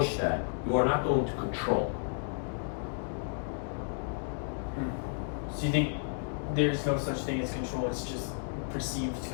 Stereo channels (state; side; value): silent; right; digital silence